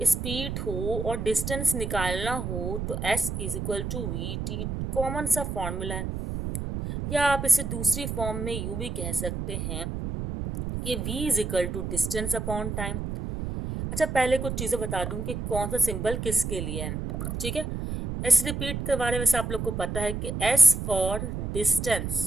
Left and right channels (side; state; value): right; noise; rumble, 4 dB below the sound